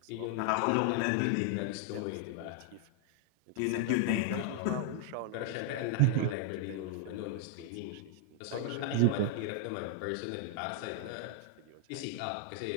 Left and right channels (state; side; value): different; both; correlation 0.00